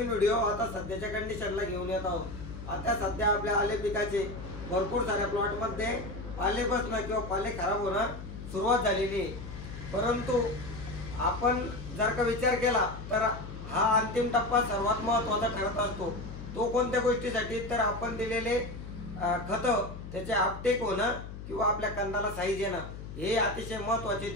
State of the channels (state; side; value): noise; left; hum, 11 dB below the sound